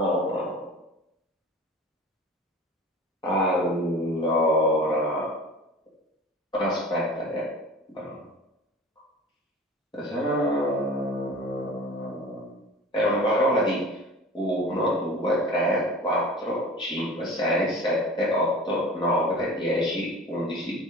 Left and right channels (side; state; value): both; normal; correlation 0.38